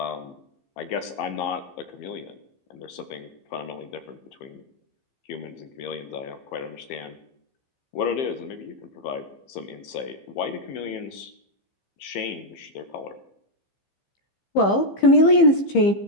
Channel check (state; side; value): late; right; 15 ms